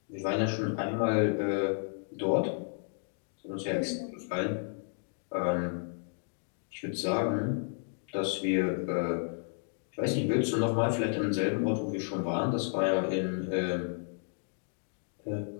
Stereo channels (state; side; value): silent; right; digital silence